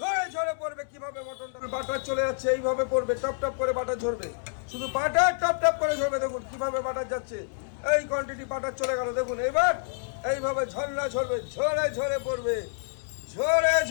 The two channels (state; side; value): silent; right; digital silence